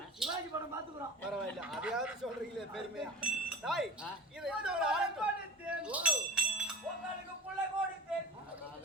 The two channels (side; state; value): both; normal; correlation 0.34